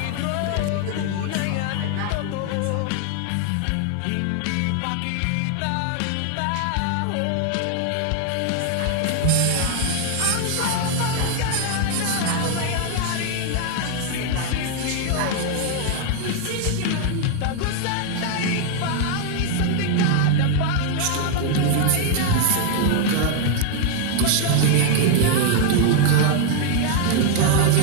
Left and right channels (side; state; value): both; different; correlation 0.00